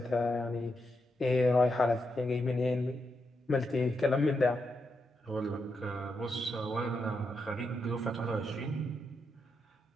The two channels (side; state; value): both; normal; correlation 0.83